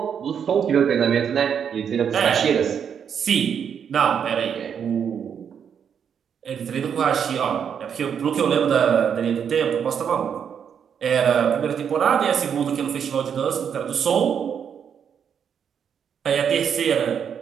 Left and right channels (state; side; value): quieter; left; 7.7 dB